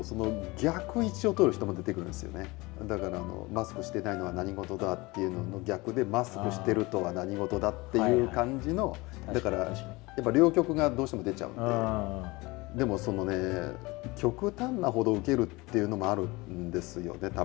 その逆位置を取る人も出てくるんですよね。だからマスクしてないのは何事だっていうのの逆で、マスクしてるとは何事だっていう感じの、だからやっぱ両極がどうしても出ちゃうんで、でもそのね、極端なほど受けるっていうのもあるんですよね、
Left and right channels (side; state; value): right; quieter; 23.1 dB